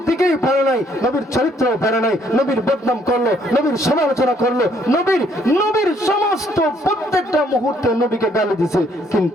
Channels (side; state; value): both; normal; correlation 0.66